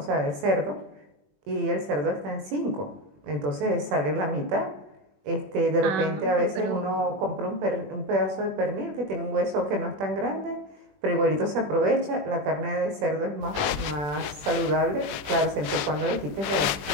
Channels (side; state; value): left; late; 20 ms